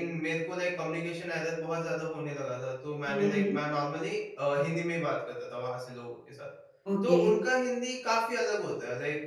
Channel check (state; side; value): identical; both; correlation 1.00